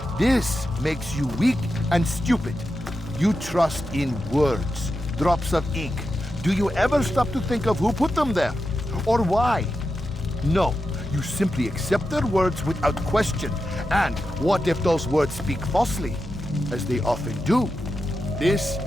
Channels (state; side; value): normal; both; correlation 0.89